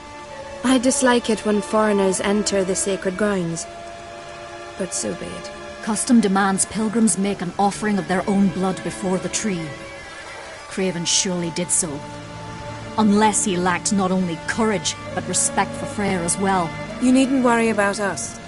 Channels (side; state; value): both; identical; correlation 1.00